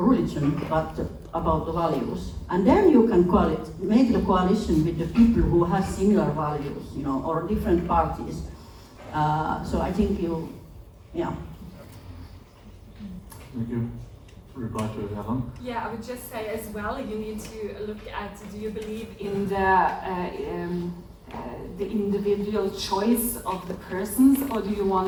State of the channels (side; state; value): both; identical; correlation 1.00